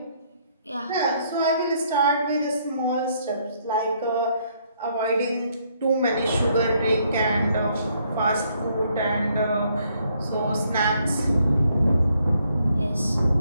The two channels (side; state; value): both; inverted; correlation -0.70